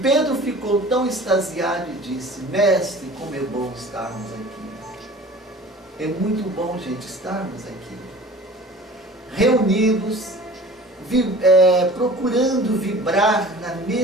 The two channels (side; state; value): both; normal; correlation 0.43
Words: ficou tão extasiado e disse: mestre, como é bom estarmos aqui. É muito bom, gente, estarmos aqui, reunidos, procurando vibrar na